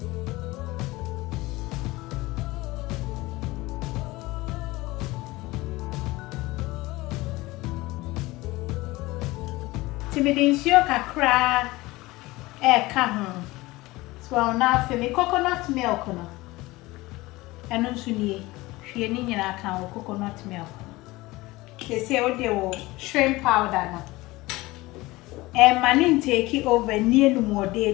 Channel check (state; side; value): quieter; right; 20.3 dB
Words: Timidincio kakra come. So I'll now fill me coconut milk. No, and no sooner she and in account coconut milk. They say, oh, they will shrimp powder. No. And man take it over near no more